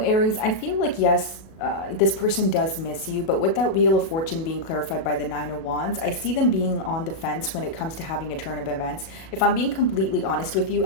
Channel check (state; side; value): late; right; 37 ms